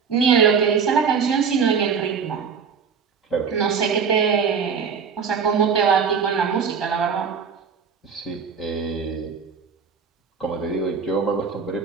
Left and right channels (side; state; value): left; quieter; 6.2 dB